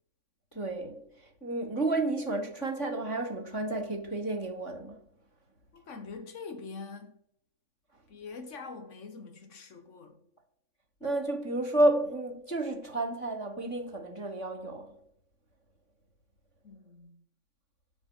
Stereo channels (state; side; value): late; right; 3.5 ms